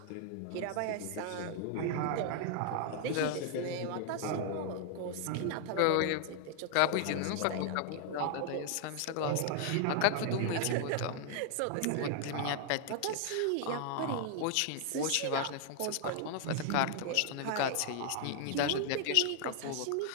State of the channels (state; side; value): different; both; correlation 0.00